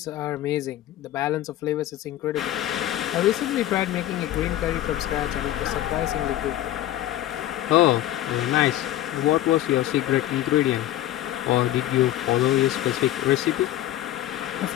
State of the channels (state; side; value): quieter; right; 13.7 dB